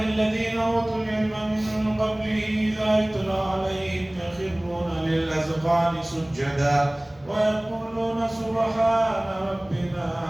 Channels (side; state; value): left; noise; hum, 28 dB below the sound